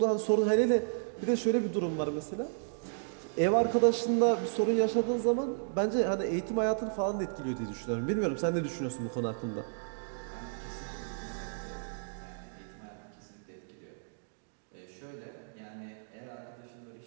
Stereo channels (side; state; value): left; silent; digital silence